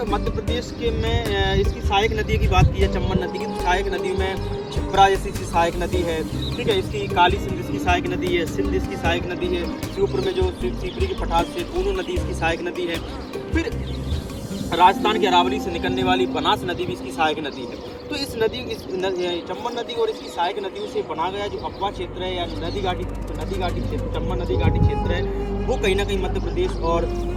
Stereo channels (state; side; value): identical; both; correlation 1.00